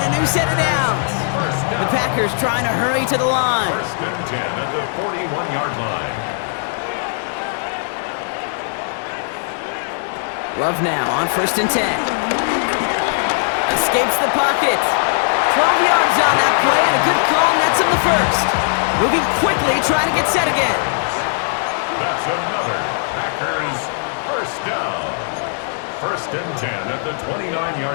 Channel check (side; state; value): right; silent; digital silence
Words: a new set of downs. The Packers trying to hurry to the line. 1st and 10 at the 41-yard line. Love now on 1st and 10. Escapes the pocket. 12 yards on that play and a good call nets him the 1st. Moving quickly, trying to get set again. That's another Packers 1st down. 1st and 10 at the